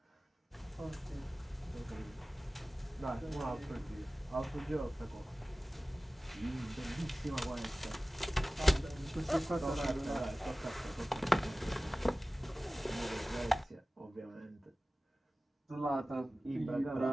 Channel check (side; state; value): both; normal; correlation 0.97